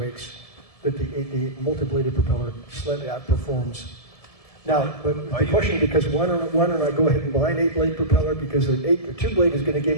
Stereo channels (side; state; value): right; late; 1.7 ms